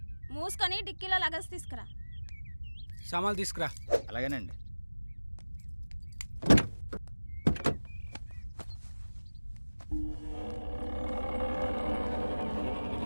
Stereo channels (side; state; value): both; inverted; correlation -1.00